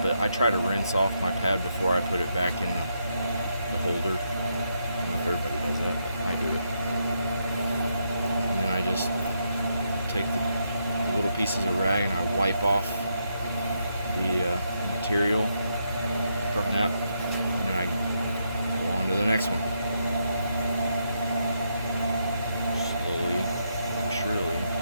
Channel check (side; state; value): both; inverted; correlation -0.80